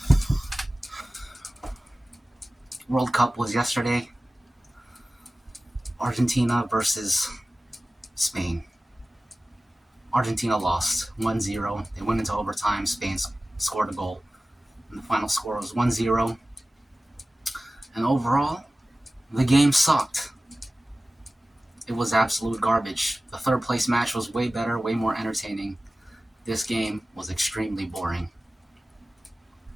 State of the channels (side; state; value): both; normal; correlation 0.96